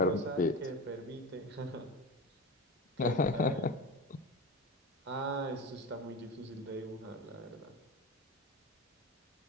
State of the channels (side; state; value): both; normal; correlation 0.26